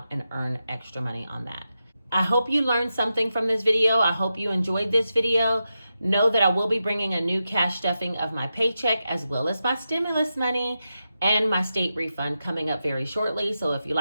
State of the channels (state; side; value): inverted; both; correlation -0.89